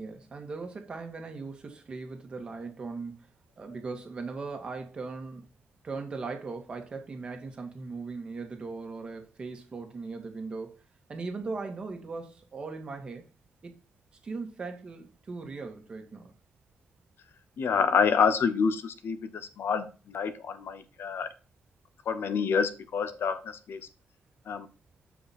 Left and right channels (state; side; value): quieter; right; 3.9 dB